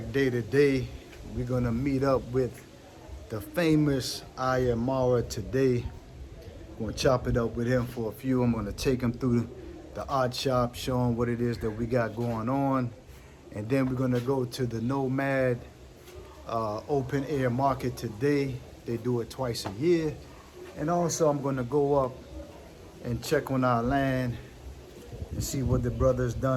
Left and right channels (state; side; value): identical; both; correlation 1.00